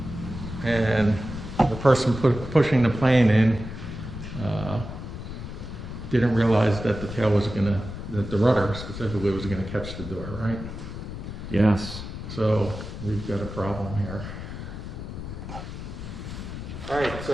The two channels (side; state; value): left; noise; rumble, 9 dB below the sound